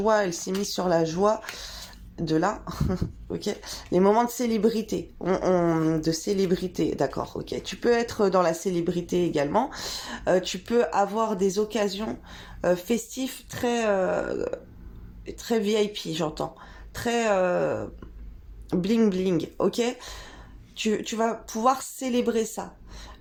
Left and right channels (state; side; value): identical; both; correlation 1.00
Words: elle s'est mise sur la joie de là, ok, les moments de célébrité, de célébrité, d'accord, ok, tu peux être dans la célébrité également, tu peux avoir des occasions festives très VIP, j'entends, très bling bling, ok, tu vas pouvoir célébrer ça,